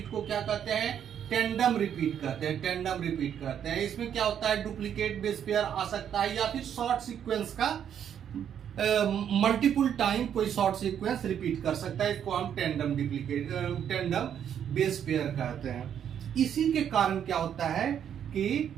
को क्या कहते हैं, टेंडम रिपीट कहते हैं। टेंडम रिपीट कहते हैं। इसमें क्या होता है, डुप्लीकेट बेस पेयर आ सकता है, या फिर शॉर्ट सीक्वेंस का मल्टीपल टाइम कोई शॉर्ट सीक्वेंस रिपीट कर सकता है। इसको हम टेंडम बेस पेयर कहते हैं। इसी के कारण क्या होता है कि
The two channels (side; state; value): left; quieter; 9.0 dB